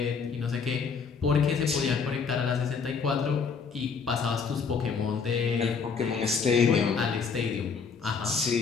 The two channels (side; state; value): right; quieter; 5.6 dB